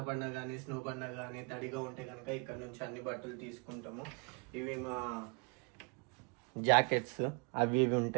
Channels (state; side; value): quieter; left; 33.0 dB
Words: పడినా కానీ స్నో పడినా కానీ తడిగా ఉంటే కనుక ఇక్కడ నుంచి అన్ని బట్టలు తీసుకుంటాము. ఇవి మా జాకెట్స్ అవి